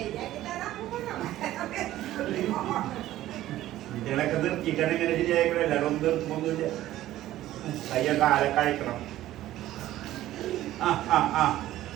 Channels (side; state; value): left; quieter; 14.4 dB